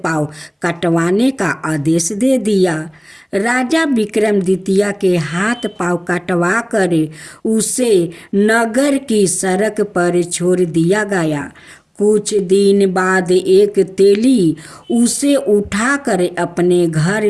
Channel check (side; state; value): both; identical; correlation 1.00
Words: पांव कटवाने का आदेश दे दिया। राजा विक्रमादित्य के हाथ पांव कटवा कर उसे नगर की सड़क पर छोड़ दिया गया। कुछ दिन बाद एक तेली उसे उठाकर अपने घर